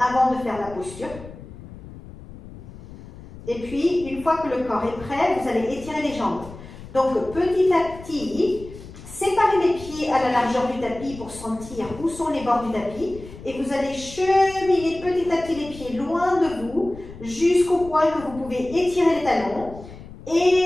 avant de faire la posture. Et puis, une fois que le corps est prêt, vous allez étirer les jambes. Donc, petit à petit, séparez les pieds à la largeur du tapis pour sentir où sont les bords du tapis. Et vous allez cheminer petit à petit les pieds loin de vous, jusqu'au point que vous pouvez étirer les talons.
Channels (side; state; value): left; noise; rumble, 16 dB below the sound